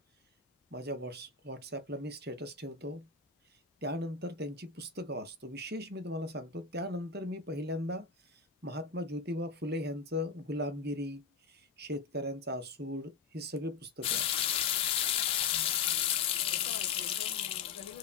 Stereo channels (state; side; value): quieter; right; 5.3 dB